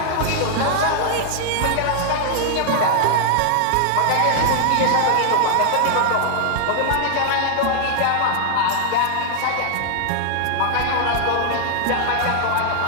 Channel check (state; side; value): different; both; correlation 0.00